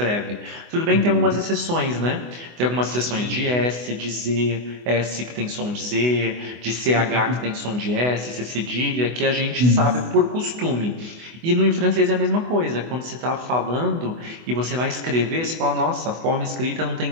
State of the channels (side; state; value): left; late; 24 ms